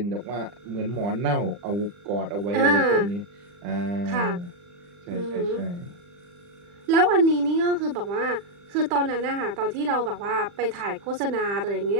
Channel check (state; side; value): late; left; 40 ms